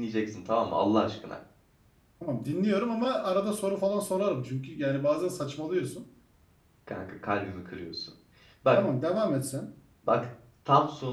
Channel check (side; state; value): both; identical; correlation 1.00